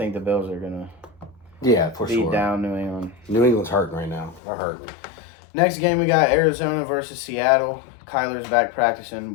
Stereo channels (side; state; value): right; drops out; at 4.4 s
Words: the Bills are gonna for beat sure. down New England. New England's hurting right now. They're hurting. Next game we got Arizona versus Seattle. Kyler's back practicing,